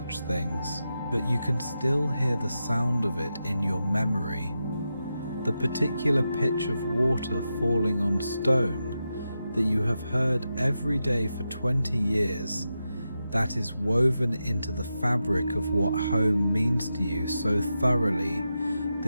things, but you can still hear the sound of it in your memory. The particular pitch of water falling on stone that you have heard every day for 20 years, that is woven into the fabric of what home means to you so thoroughly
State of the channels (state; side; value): inverted; both; correlation -0.89